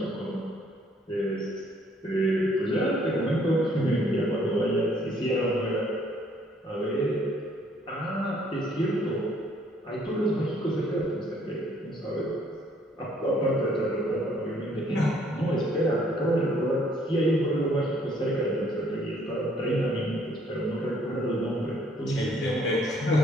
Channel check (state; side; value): normal; both; correlation 0.63